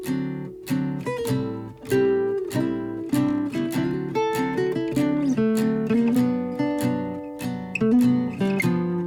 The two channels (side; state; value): both; identical; correlation 1.00